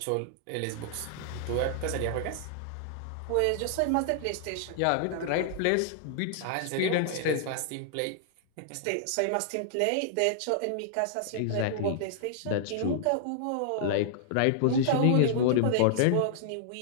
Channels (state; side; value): different; both; correlation -0.01